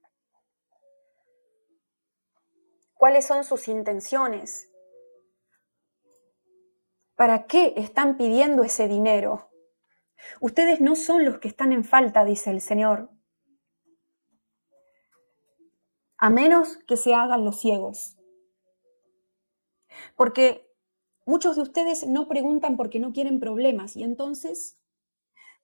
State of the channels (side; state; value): both; inverted; correlation -1.00